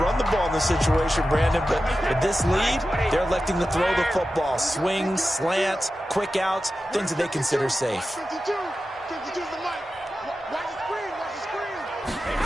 run the ball in this situation, Brandon, but with this lead, they're electing to throw the football. Swings, slants, quick outs, things that they consider safe.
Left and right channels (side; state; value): both; normal; correlation 0.93